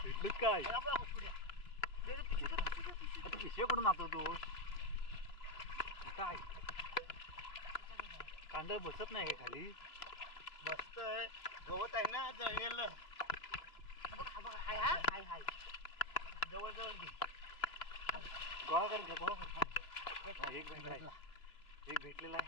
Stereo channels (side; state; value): right; late; 3.0 ms